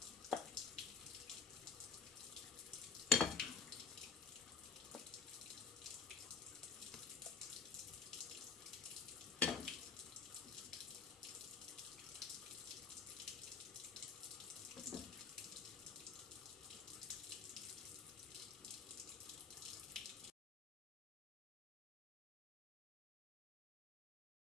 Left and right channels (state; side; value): quieter; right; 5.2 dB